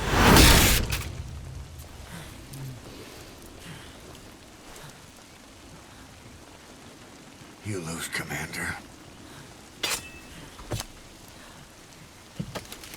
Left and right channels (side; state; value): both; identical; correlation 1.00